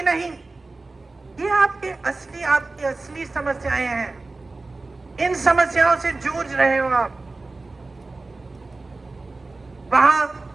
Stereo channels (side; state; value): left; quieter; 3.4 dB